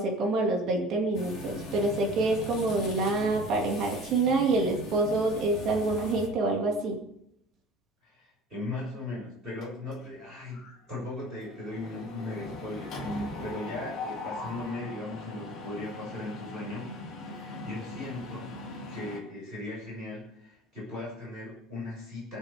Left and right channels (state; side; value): normal; both; correlation 0.43